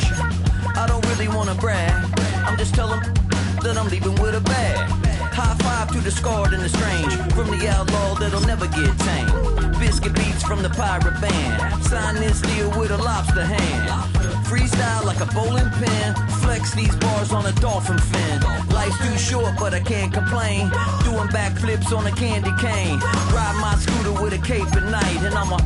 I don't really wanna brag, I'm just telling that I'm leaving with a bag. High five to the scarred and the strange, from the outlaw that'll never get tamed. Biscuit beats from the pirate band, sign this deal with a lobster hand. Freestyle like a bowling pin, flex these bars on a dolphin fin. Life's too short but I can't complain, doing backflips on a candy cane. Ride my scooter with a cape at night, and I'ma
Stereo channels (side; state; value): both; identical; correlation 1.00